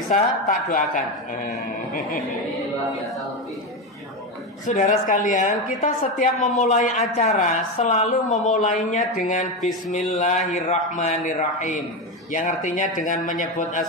tak doakan. Saudara sekalian, kita setiap memulai acara selalu memulainya dengan Bismillahirrahmanirrahim, yang artinya dengan menyebut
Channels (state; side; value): normal; both; correlation 0.15